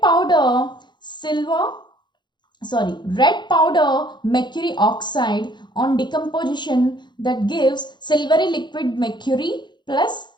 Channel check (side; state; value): right; late; 0.22 ms